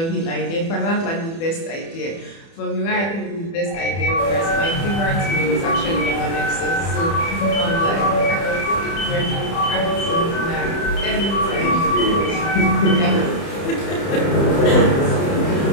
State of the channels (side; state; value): right; late; 30 ms